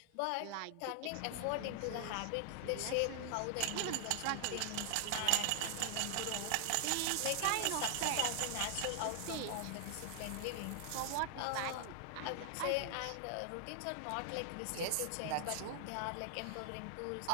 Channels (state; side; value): different; both; correlation 0.00